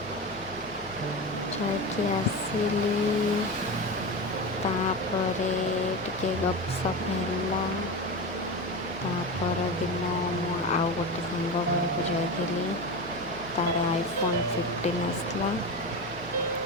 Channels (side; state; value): right; noise; hum, 18 dB below the sound